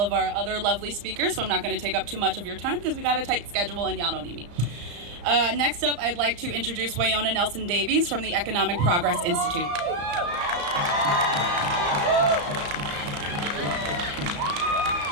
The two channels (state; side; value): late; left; 34 ms